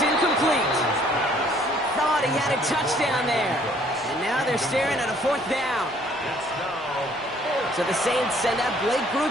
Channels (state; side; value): normal; both; correlation 0.60